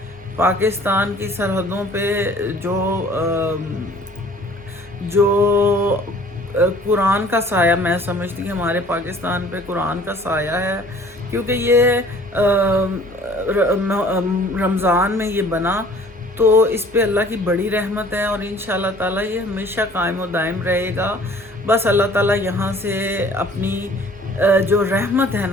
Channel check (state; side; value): normal; both; correlation 0.52